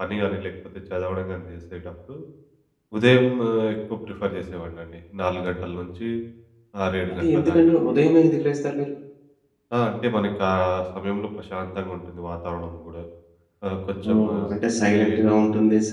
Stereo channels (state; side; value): identical; both; correlation 1.00